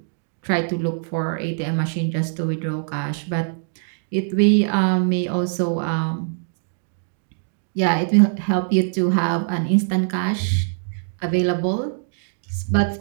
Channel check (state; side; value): silent; left; digital silence